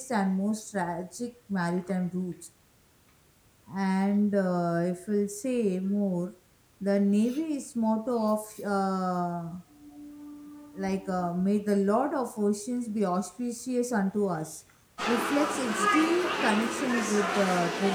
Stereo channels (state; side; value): identical; both; correlation 1.00